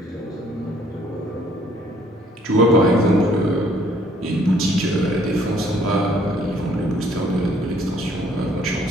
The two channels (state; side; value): normal; both; correlation 0.62